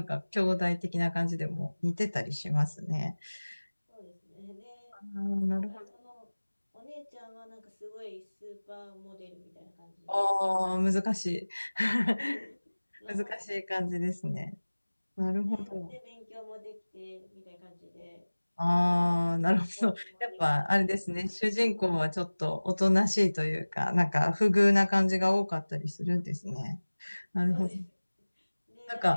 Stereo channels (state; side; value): inverted; both; correlation -1.00